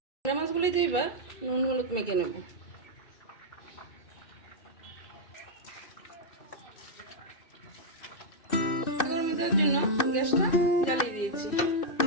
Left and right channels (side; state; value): right; late; 2.6 ms